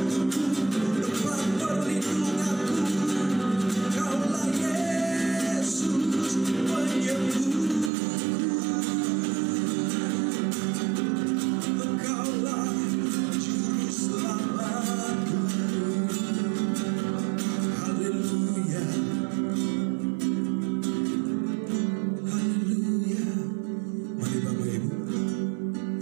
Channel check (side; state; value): left; drops out; at 7.9 s